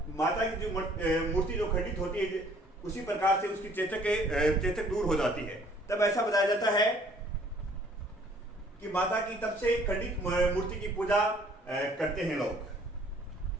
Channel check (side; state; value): both; normal; correlation 0.58